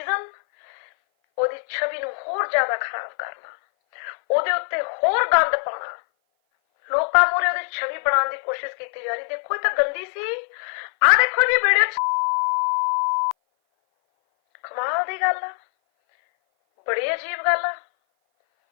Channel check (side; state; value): right; silent; 57 dB below the other